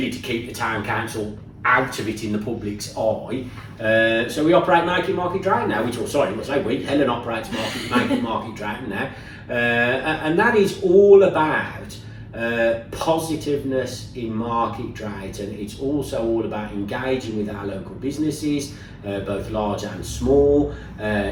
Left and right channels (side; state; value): both; identical; correlation 1.00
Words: to keep the town council out of it in the public's eye. So we operate Make It Market Drayton now, Helen operates Make It Market Drayton now, and that is all about positiveness in Market Drayton. It's also all about engaging with our local businesses, both large and small,